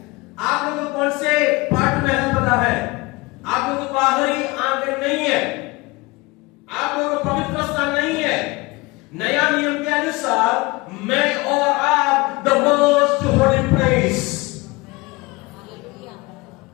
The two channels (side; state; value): right; quieter; 23.4 dB